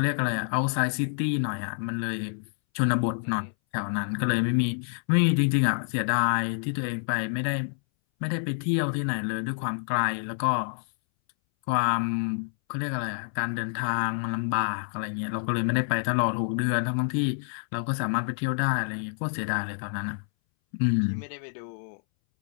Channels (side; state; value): right; silent; 60 dB below the other